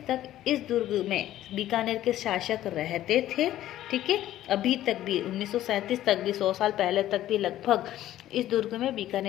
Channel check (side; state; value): right; quieter; 13.4 dB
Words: तक इस दुर्ग में बीकानेर के शासक रहते थे। ठीक है, अभी तक भी 1937 तक भी, 100 साल पहले तक भी लगभग इस दुर्ग में